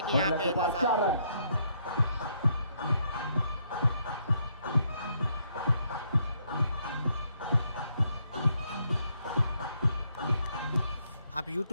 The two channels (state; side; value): inverted; both; correlation -0.73